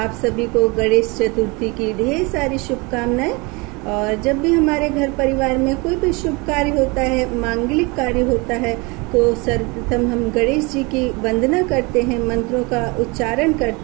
सभी को गणेश चतुर्थी की ढेर सारी शुभकामनाएं। और जब भी हमारे घर परिवार में कोई भी शुभ कार्य होता है, मांगलिक कार्य होता है, तो सर्वप्रथम हम गणेश जी की वंदना करते हैं, मंत्रों का उच्चारण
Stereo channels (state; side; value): quieter; left; 27.1 dB